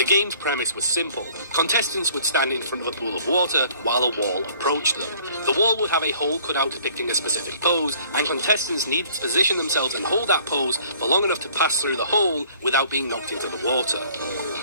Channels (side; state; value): both; inverted; correlation -0.55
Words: game's premise was simple. Contestants would stand in front of a pool of water while a wall approached them. The wall would have a hole cut out depicting a specific pose, and contestants needed to position themselves and hold that pose for long enough to pass through the hole without being knocked into the water.